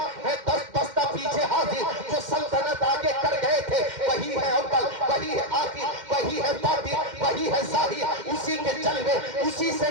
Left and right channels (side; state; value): left; late; 2.1 ms